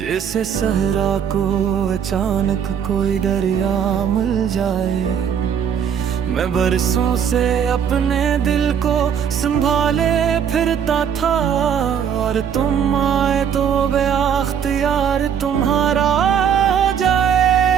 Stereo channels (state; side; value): quieter; left; 8.1 dB